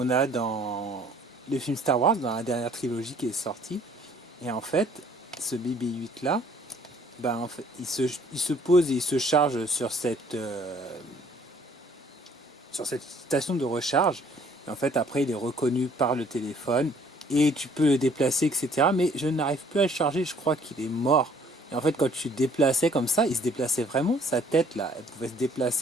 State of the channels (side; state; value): both; normal; correlation 0.59